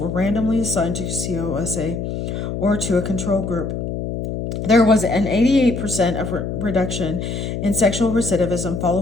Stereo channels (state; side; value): noise; left; hum, 4 dB below the sound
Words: randomly assigned to COSA or to a control group. There was an 88% of reduction in sexual recidivism